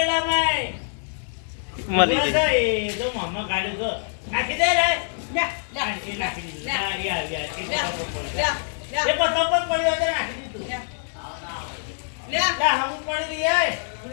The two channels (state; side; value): silent; right; digital silence